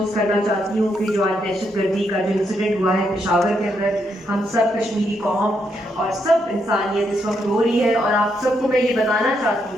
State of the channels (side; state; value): both; normal; correlation 0.78